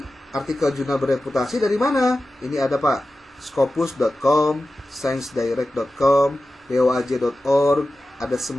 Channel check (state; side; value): normal; both; correlation 0.94